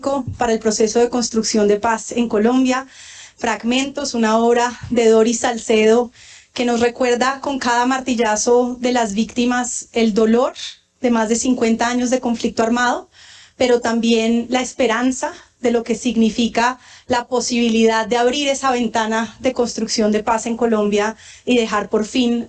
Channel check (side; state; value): both; identical; correlation 1.00